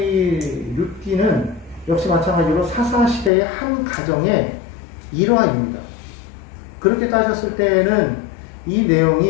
룻기는 역시 마찬가지로 사사시대의 한 가정의 일화입니다. 그렇게 따졌을 때에는 이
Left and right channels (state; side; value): drops out; right; at 3.3 s